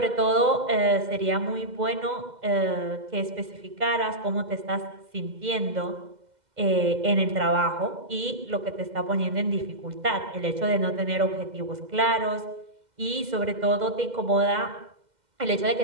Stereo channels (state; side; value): late; left; 2.1 ms